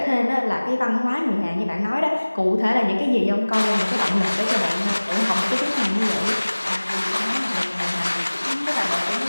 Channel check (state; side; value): inverted; both; correlation -1.00